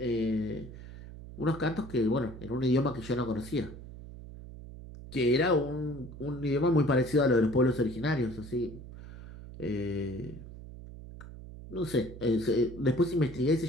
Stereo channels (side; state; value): right; noise; hum, 14 dB below the sound